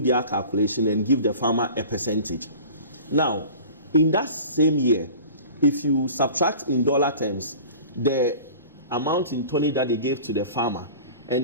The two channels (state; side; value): inverted; both; correlation -0.41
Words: their calculation and give the farmer a percentage. Now, in that same year, if you subtract in dollar terms the amount in tonnage that they gave to the farmer